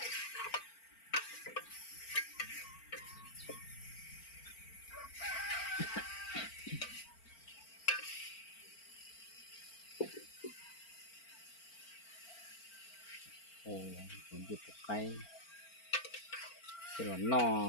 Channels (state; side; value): late; right; 4.4 ms